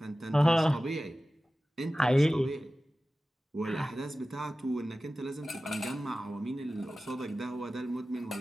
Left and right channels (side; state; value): both; normal; correlation 0.96